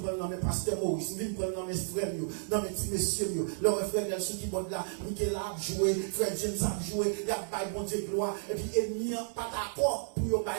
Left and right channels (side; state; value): left; silent; 56 dB below the other